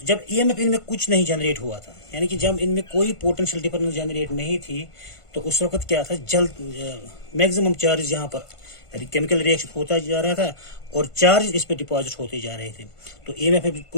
जब ईएमएफ इनमें कुछ नहीं जनरेट हुआ था, यानी कि जब इनमें कोई पोटेंशियल डिफरेंस जनरेट नहीं थी, तो उस वक्त क्या था, जल्द मैक्सिमम चार्ज यहाँ पर केमिकल रिएक्शन होता जा रहा था और चार्ज इस पे डिपॉजिट होते जा रहे थे। तो ईएमएफ में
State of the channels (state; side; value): late; right; 1.5 ms